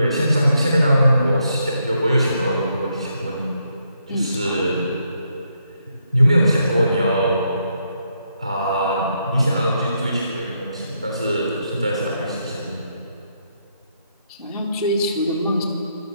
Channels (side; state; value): both; inverted; correlation -0.77